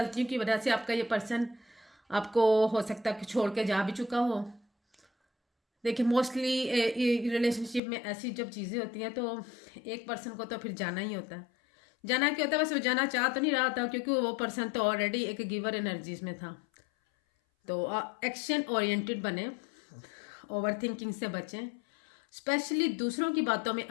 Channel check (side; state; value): right; drops out; at 7.8 s